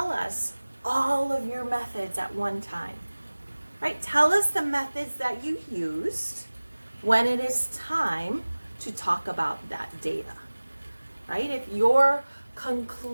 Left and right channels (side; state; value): both; inverted; correlation -1.00